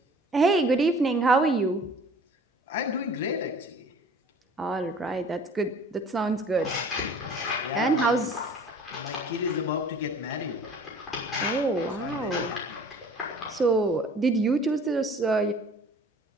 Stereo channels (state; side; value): normal; both; correlation 0.48